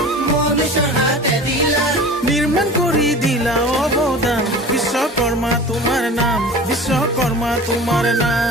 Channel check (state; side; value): normal; both; correlation 0.38